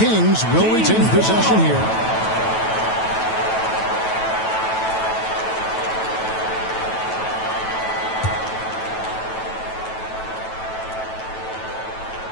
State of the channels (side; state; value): right; late; 9.2 ms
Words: will retain possession here.